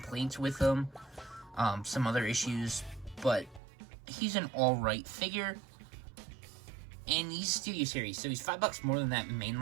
with him, some other issues, but he's an alright figure. And he's Studio Series, so he's $5 more than that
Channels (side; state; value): left; drops out; at 3.6 s